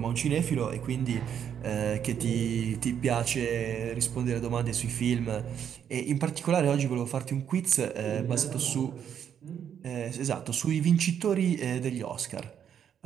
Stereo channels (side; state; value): left; quieter; 8.7 dB